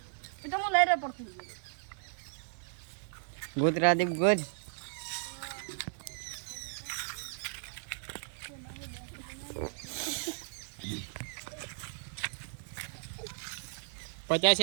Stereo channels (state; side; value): silent; left; 54 dB below the other